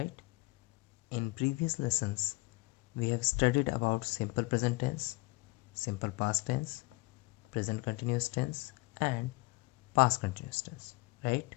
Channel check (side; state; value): right; quieter; 24.4 dB